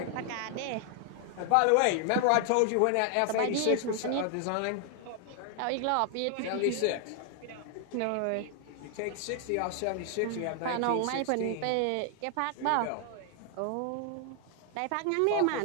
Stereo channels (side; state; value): both; different; correlation 0.00